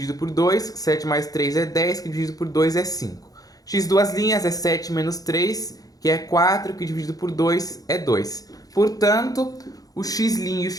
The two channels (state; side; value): late; right; 0.18 ms